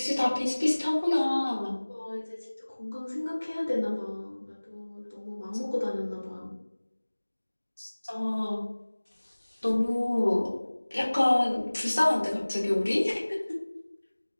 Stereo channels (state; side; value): inverted; both; correlation -1.00